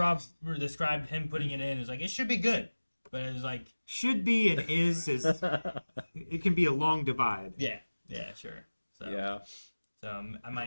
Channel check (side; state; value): both; inverted; correlation -1.00